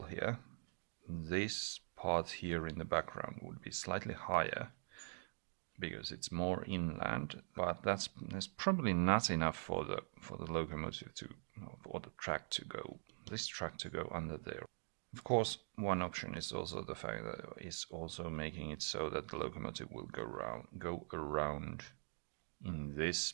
here. This part here in the background would be slightly higher because it's more inland, but that's probably not enough for the locomotive to, or the track to go, this track to go under there. Of course, one option is also the fact that it's also making it so that the locomotive will go around in this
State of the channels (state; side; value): silent; left; digital silence